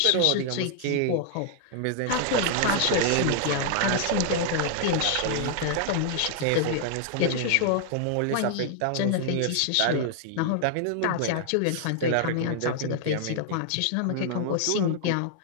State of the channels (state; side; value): different; both; correlation 0.00